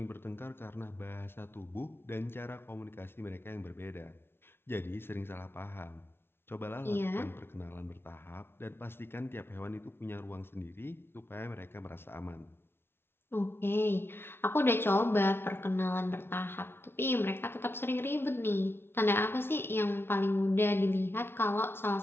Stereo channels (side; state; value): right; late; 0.11 ms